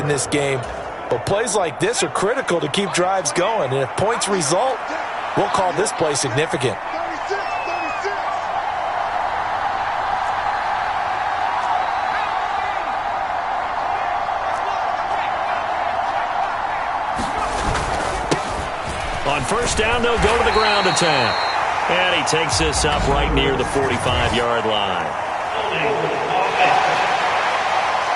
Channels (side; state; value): both; identical; correlation 1.00